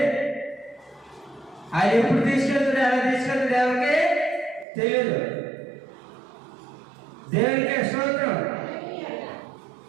ఆయన ఎప్పుడు తీసుకెళ్తాడు, ఎలా తీసుకెళ్తాడు ఎవరికి తెలియదు. దేవుడికే స్తోత్రం.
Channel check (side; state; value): left; drops out; at 4.7 s